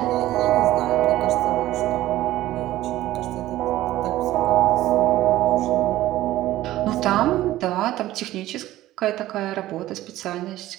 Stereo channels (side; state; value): left; quieter; 15.3 dB